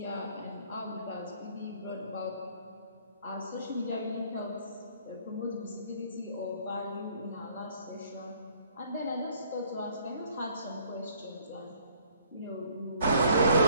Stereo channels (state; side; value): inverted; both; correlation -0.60